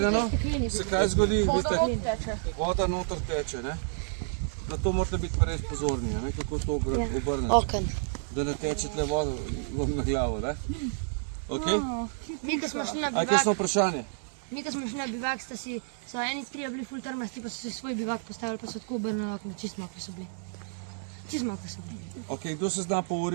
se kaj zgodi, vidite, Teče. voda noter teče, ne. Na to morate biti pa res pozorni, a ne, kako to obrnete. Oken. Da ne teče tle voda vam na glavo, ne. Okej? Mi, ko smo šli na A je kakšno vprašanje? bivak, so eni trije bili ful trmasti, pa so si svoj bivak postavili, pa so tako obrnili okno, čist mokri so bili. Čist mokri so bili. Okej, kdo se zna po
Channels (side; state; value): left; silent; digital silence